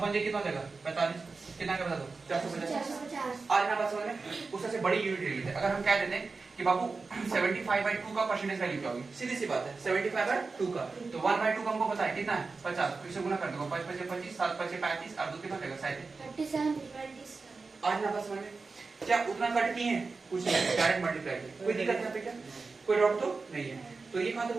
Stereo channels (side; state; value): left; quieter; 4.2 dB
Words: कितना हो जाएगा 45, कितना का बता दो 450। 450 आज ना बात समझ में उससे बड़ी यूनिट ले लेते हैं। अगर हम कह देते हैं कि बाबू 75/2 का परसेंटेज वैल्यू क्या होगी, सीधी सी बात है 75/2 का, तो 1/2 का हमको पता है कितना है 50, फिर से गुना कर दो 5 5 25 7 5 35 और 2 कितना हो जाएगा 37। 37 आज ना बात समझ में क्या उतना कट नहीं है, कुछ नहीं, डायरेक्ट मल्टीप्लाई किया, कोई दिक्कत यहाँ पे क्या, कोई डाउट तो नहीं है। तो ये कहां तक